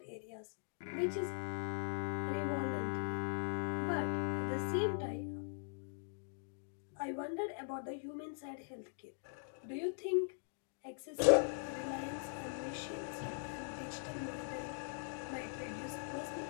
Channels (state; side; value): silent; right; digital silence